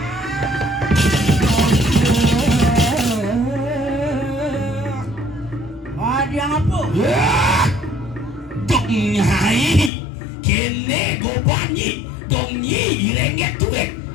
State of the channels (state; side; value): drops out; right; at 9.9 s